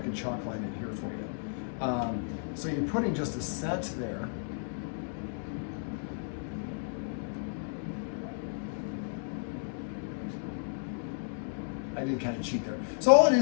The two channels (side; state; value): right; silent; digital silence